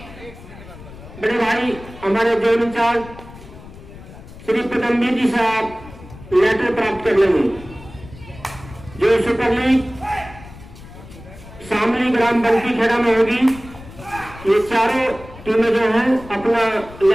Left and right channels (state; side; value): noise; left; rumble, 17 dB below the sound